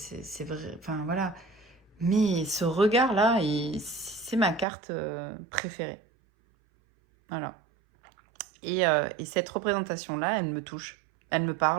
vrai, enfin voilà. Mais ce regard-là, c'est ma carte préférée. Voilà. Et cette représentation-là, elle me touche. Elle me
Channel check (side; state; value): left; drops out; at 4.7 s